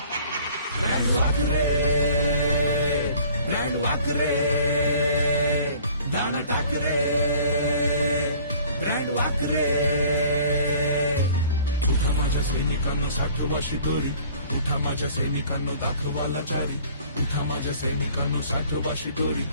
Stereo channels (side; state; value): both; inverted; correlation -0.52